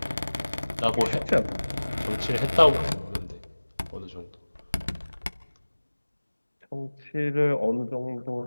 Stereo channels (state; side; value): inverted; both; correlation -1.00